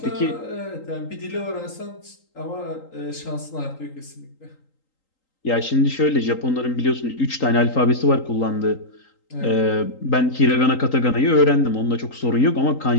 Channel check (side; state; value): right; late; 3.8 ms